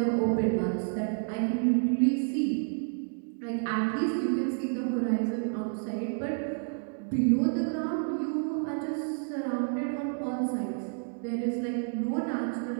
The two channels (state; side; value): silent; left; 58 dB below the other